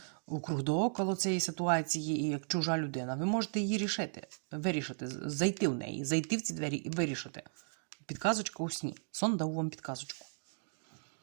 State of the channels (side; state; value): left; silent; digital silence